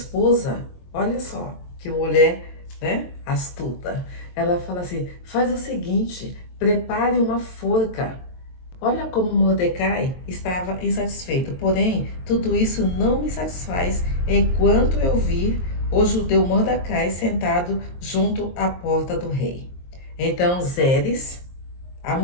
olha só, que mulher, né, astuta. Ela fala assim, faz o seguinte, prepare uma forca. Olha como Mordecai estava insatisfeito. Porém, tudo isso não me satisfaz enquanto eu vir o judeu Mordecai sentado junto à porta do rei. Então Zeres, a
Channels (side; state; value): right; late; 22 ms